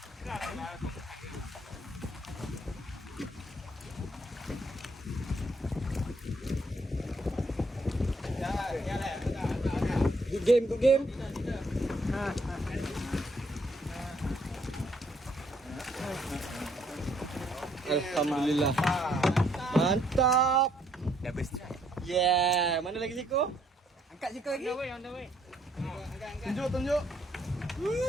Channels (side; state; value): both; normal; correlation 0.69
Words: Good game. Alhamdulillah. Mantap. Double strike. Yeah, mana lagi Siko? Angkat sikit lagi. On the way. Tunjuk.